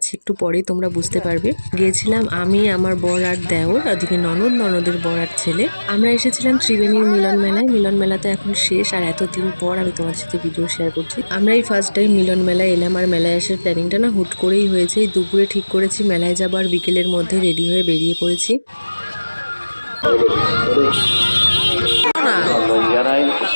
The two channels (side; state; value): both; inverted; correlation -1.00